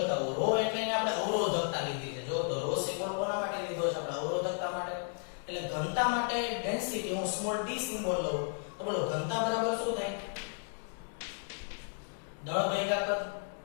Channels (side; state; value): right; silent; 55 dB below the other